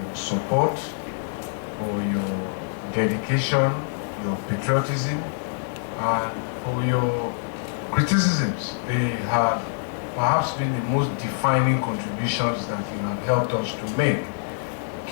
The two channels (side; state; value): right; silent; 62 dB below the other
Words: your support, for your dedication, your patriotism, and for your criticisms. They have perhaps been the most defining contributions that you have helped us to make,